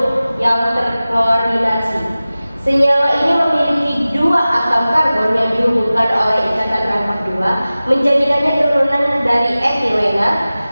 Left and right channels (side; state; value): both; inverted; correlation -0.97